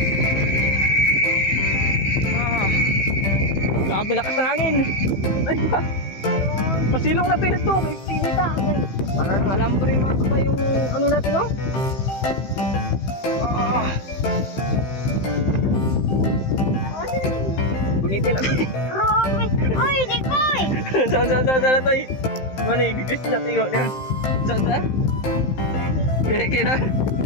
Grabe lakas ng hangin. Pasilong na pinito, may pinita. Para nang alambre mga kabay yung ano natin, no? Bunitin natin. Romy! Oy, di ko eh! Saan na to eh? Ano yung bigis na tiyo niya? Saan? Kaya na?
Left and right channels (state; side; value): late; right; 15 ms